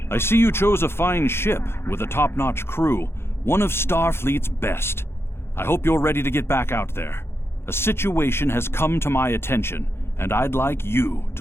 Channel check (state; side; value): late; right; 0.12 ms